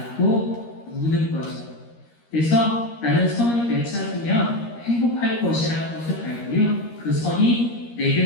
우는 거죠. 그래서 나는 선을 되찾으면 행복할 것이라는 것을 알고요. 그 선이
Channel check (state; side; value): late; right; 13 ms